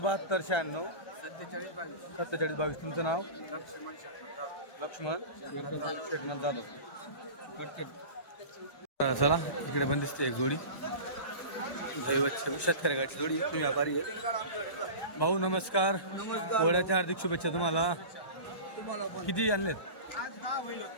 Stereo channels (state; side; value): late; right; 1.1 ms